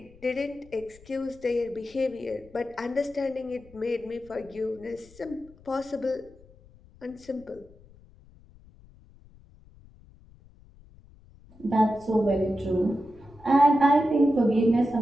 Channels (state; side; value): noise; left; rumble, 25 dB below the sound